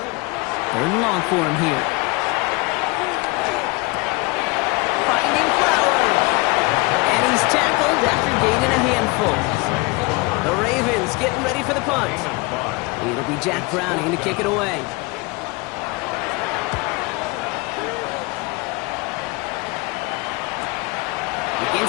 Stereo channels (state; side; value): quieter; right; 25.8 dB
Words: and long for him here. Finding Flowers. And he's tackled after gaining a handful. The Ravens getting ready for the punt. It'll be Jack Browning to kick it away.